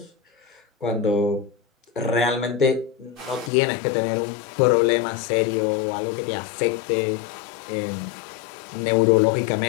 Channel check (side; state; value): right; drops out; at 3.5 s